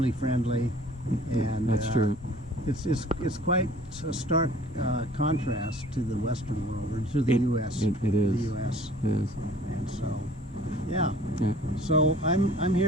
friendly. And that's true. It's quite a stark contrast to the Western world, or to the U.S. It is. The U.S. It is. And so, yeah. So I'm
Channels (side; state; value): both; normal; correlation 0.50